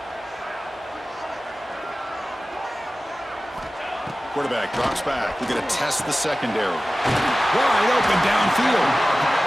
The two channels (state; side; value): normal; both; correlation 0.96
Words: Quarterback drops back. We're going to test the secondary. Wide open downfield.